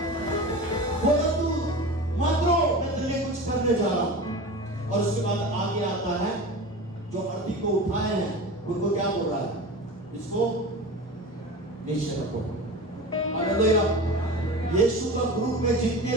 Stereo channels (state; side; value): normal; both; correlation 0.31